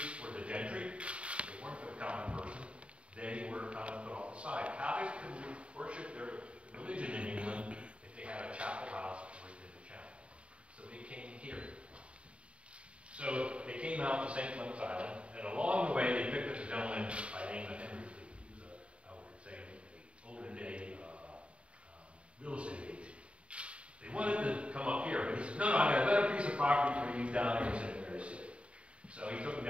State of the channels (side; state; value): left; late; 0.060 ms